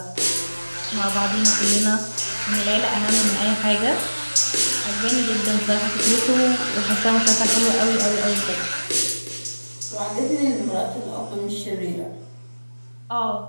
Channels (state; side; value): inverted; both; correlation -1.00